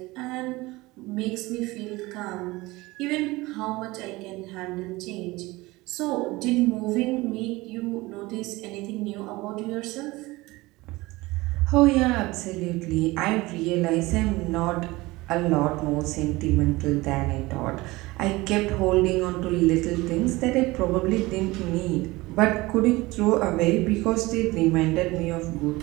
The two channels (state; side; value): quieter; left; 21.0 dB